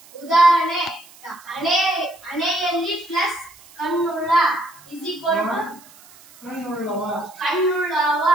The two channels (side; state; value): right; noise; hiss, 24 dB below the sound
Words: ಉದಾಹರಣೆ, ಹಣೆಯಲ್ಲಿ ಪ್ಲಸ್ ಕಣ್ಣುಳ್ಳ ಕಣ್ಣುಳ್ಳವ,